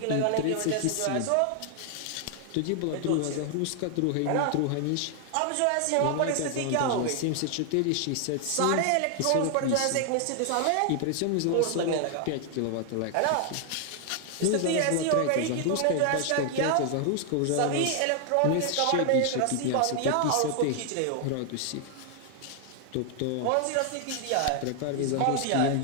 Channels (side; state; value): both; different; correlation 0.00